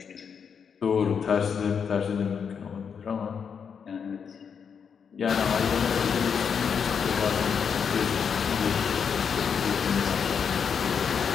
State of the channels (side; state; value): right; quieter; 6.8 dB